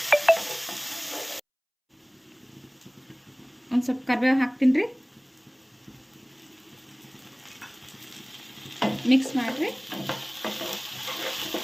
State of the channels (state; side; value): identical; both; correlation 1.00